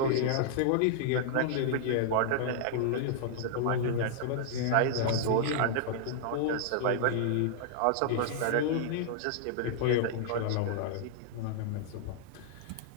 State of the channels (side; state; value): both; different; correlation -0.01